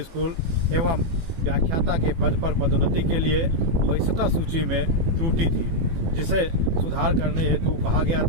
स्कूल एवं व्याख्याता के पद पर पदोन्नति के लिए वरिष्ठता सूची में त्रुटि थी, जिसे सुधार करने हेतु कहा गया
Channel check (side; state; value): left; late; 18 ms